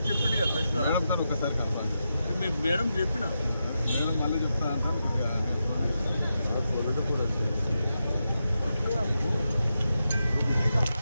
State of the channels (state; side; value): inverted; both; correlation -0.87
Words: మేడంతో ఒకసారి కలపాలి. మేడం చెప్పిన మేడం మళ్ళీ చెప్తా కూడా